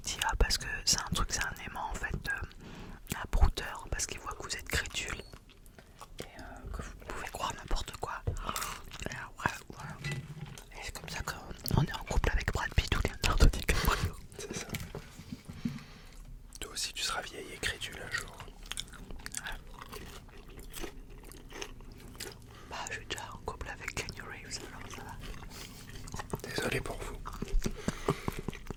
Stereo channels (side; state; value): both; identical; correlation 1.00